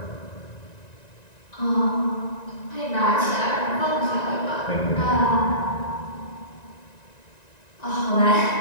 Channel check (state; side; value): late; right; 1.9 ms